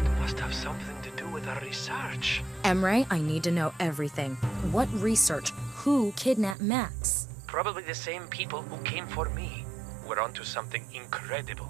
must have something to do with our research. Emre, I need to know everything. What research? Who kidnapped Max? Probably the same people who came for me. We're onto something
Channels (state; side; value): drops out; left; at 6.6 s